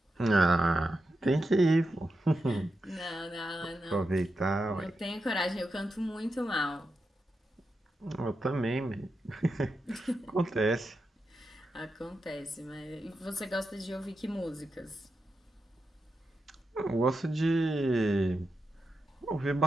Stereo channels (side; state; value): both; normal; correlation 0.88